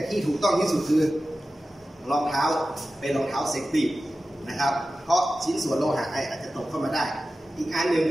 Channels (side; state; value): both; normal; correlation 0.94